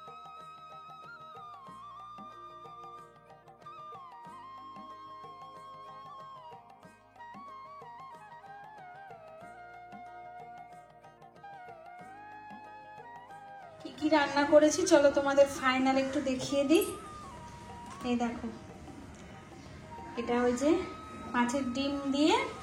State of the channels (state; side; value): identical; both; correlation 1.00